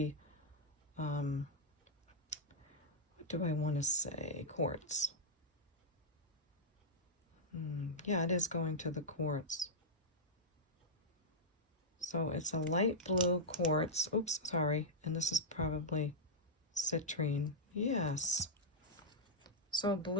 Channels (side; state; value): both; normal; correlation -0.07